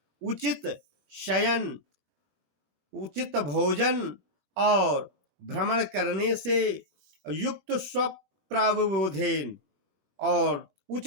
उचित शयन, उचित भोजन और भ्रमण करने से, युक्त स्वप्रावबोधेन और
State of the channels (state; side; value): late; left; 21 ms